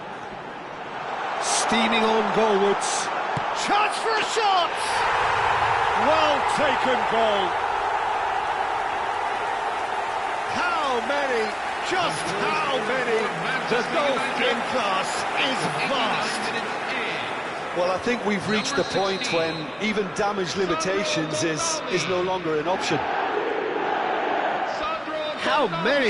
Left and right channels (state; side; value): identical; both; correlation 1.00